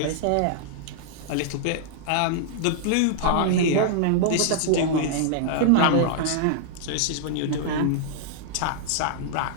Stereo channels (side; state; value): both; different; correlation -0.01